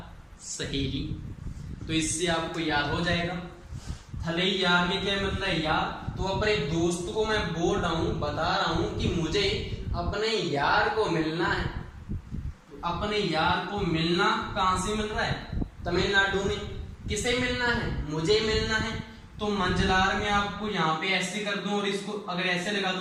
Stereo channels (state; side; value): identical; both; correlation 1.00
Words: सहेली। तो इससे आपको याद हो जाएगा थलैयार में क्या मतलब है? यार। तो अपने दोस्त को मैं बोल रहा हूं, बता रहा हूं कि मुझे अपने यार को मिलना है। तो अपने यार को मिलना कहां से मिल रहा है? तमिलनाडु में। किसे मिलना है? मुझे मिलना है। तो मंजलार में आपको यहाँ पे ऐसे कर दूं और इसको अगर ऐसे लगा